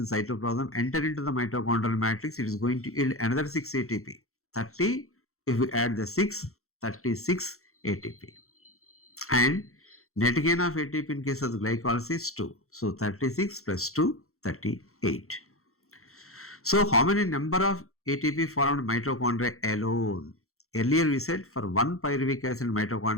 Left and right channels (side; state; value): right; late; 0.63 ms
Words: cytoplasm enter into the mitochondrial matrix, it is going to yield another 6 ATP. 30, if we add the 6, 36 ATP. And net gain of ATP in case of the glycolysis 2. So 36 plus 2, 38. So how many number of ATP formed mitochondria alone? Earlier we said for 1 pyruvic acid